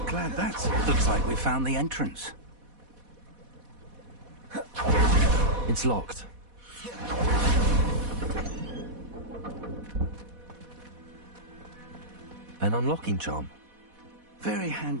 Glad that's... Looks like we found the entrance. It's locked. An unlocking charm. Very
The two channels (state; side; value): late; left; 4.1 ms